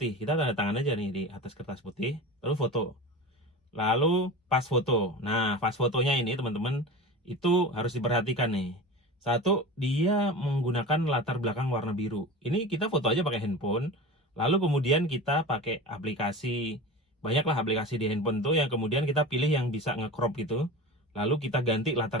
kita tanda tangan aja nih di atas kertas putih, lalu foto. Lalu pas foto. Nah pas fotonya ini teman-teman itu harus diperhatikan nih. Satu, dia menggunakan latar belakang warna biru. Ini kita foto aja pakai handphone, lalu kemudian kita pakai aplikasi. Banyaklah aplikasi di handphone tuh yang kemudian kita pilih yang bisa nge-crop gitu. Lalu kita ganti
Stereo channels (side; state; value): both; normal; correlation 0.31